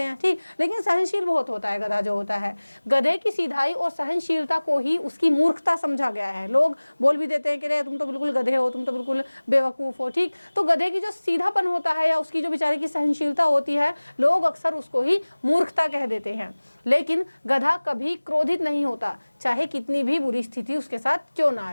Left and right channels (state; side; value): inverted; both; correlation -1.00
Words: हैं। ठीक, लेकिन सहनशील बहुत होता है गधा जो होता है। गधे की सीधाई और सहनशीलता को ही उसकी मूर्खता समझा गया है। लोग बोल भी देते हैं कि रे तुम तो बिल्कुल गधे हो, तुम तो बिल्कुल बेवकूफ हो। ठीक, तो गधे की जो सीधापन होता है या उसकी जो बेचारे की सहनशीलता होती है, लोग अक्सर उसको ही मूर्खता कह देते हैं। लेकिन गधा कभी क्रोधित नहीं होता, चाहे कितनी भी बुरी स्थिति उसके साथ क्यों ना आ